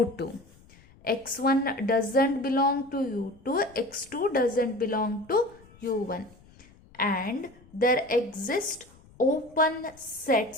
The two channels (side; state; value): left; noise; rumble, 26 dB below the sound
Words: x1 doesn't belong to u2, x2 doesn't belong to u1, and there exist open